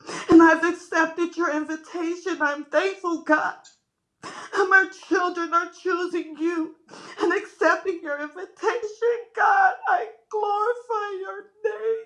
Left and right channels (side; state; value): both; identical; correlation 1.00